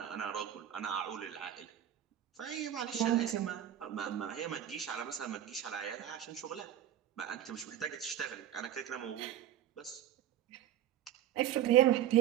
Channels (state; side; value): quieter; left; 11.3 dB